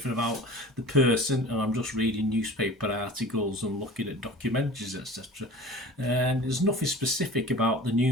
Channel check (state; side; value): normal; both; correlation 0.40